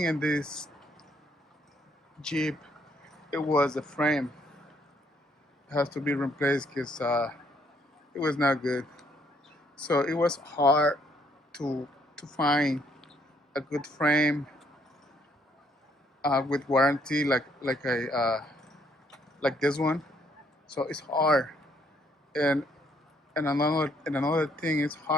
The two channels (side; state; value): both; normal; correlation 0.69